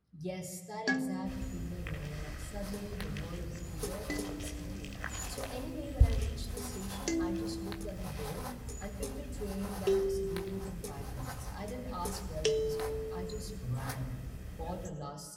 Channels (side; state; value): both; identical; correlation 1.00